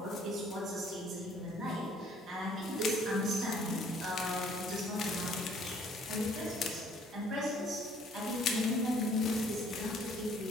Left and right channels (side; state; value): both; normal; correlation 0.59